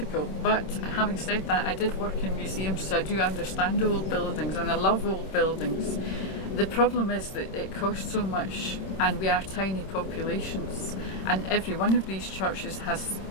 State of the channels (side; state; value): right; late; 26 ms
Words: but having said that, I did work in museums, so I do understand old buildings and I love old buildings. The problem is that it costs so much and we are tiny populations, and every one of these churches has